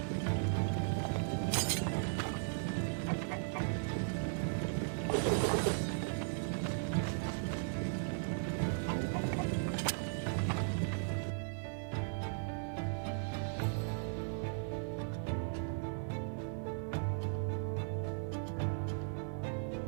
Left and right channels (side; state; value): left; silent; 53 dB below the other